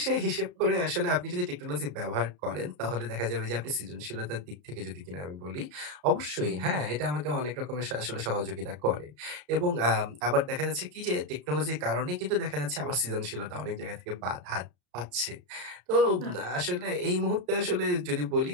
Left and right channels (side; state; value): left; late; 33 ms